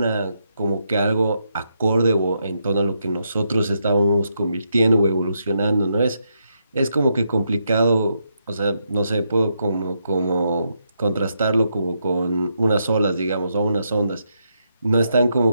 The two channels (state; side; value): inverted; both; correlation -0.80